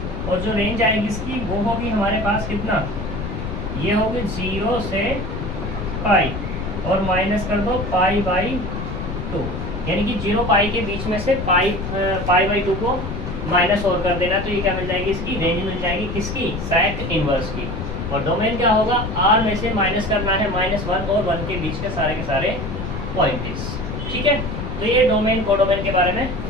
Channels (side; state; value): left; noise; rumble, 5 dB below the sound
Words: और जो रेंज आएगी इसकी वो होगी हमारे पास कितना, ये होगी 0 से π, और माइनस कर दो π/2, यानी कि 0 π के बीच में से π/2 को माइनस और कर देना। तो ये क्या मिल जाएगी, इसकी रेंज मिल जाएगी किसकी, सेक इनवर्स की। और डोमेन क्या होगा, R में से माइनस करना है -1 और 1 के बीच के सारे पॉइंट्स। ठीक है, तो ये डोमेन कोडोमेन के बारे में